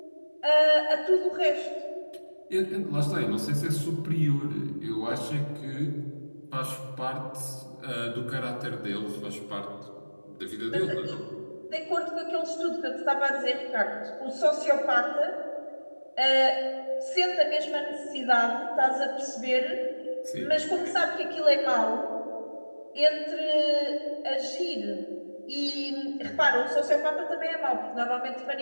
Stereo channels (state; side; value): inverted; both; correlation -1.00